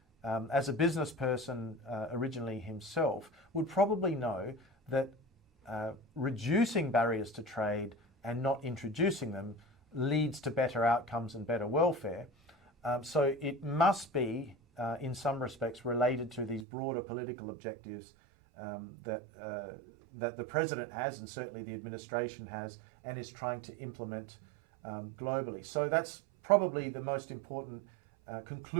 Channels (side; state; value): left; drops out; at 16.7 s